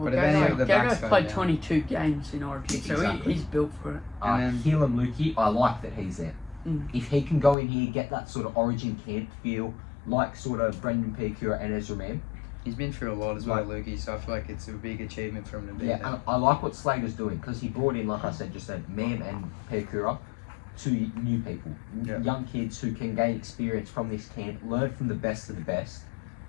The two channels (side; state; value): right; drops out; at 7.6 s